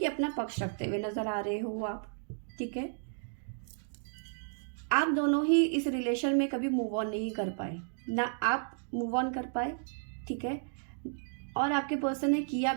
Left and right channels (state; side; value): silent; left; digital silence